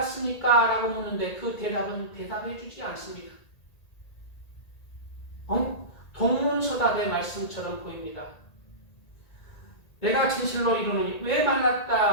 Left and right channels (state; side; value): late; right; 1.8 ms